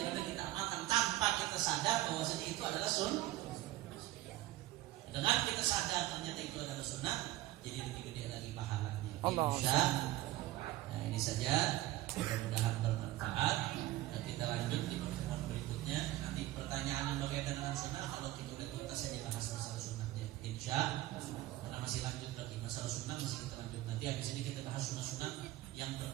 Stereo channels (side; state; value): left; quieter; 16.1 dB